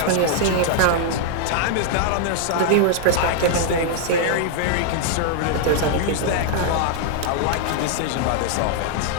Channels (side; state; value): both; different; correlation -0.01